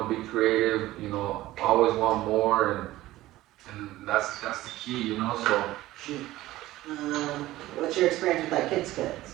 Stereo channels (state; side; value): quieter; left; 16.4 dB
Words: creative, always want more, and that's the key, so. Shoot. What's your experience with like kids cuts?